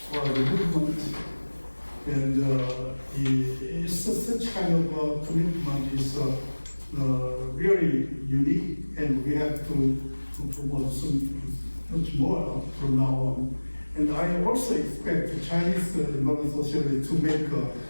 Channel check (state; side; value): inverted; both; correlation -1.00